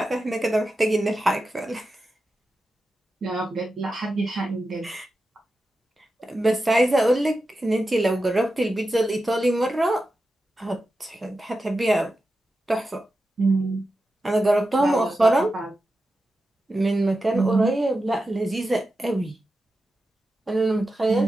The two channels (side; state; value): both; normal; correlation 0.91